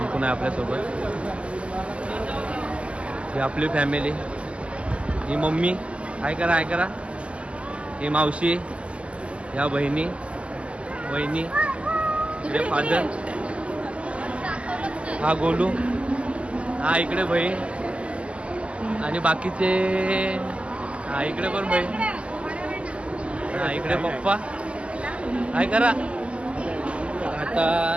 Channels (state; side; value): late; left; 0.056 ms